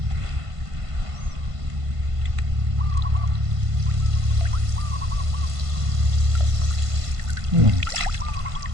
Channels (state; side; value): late; left; 1.5 ms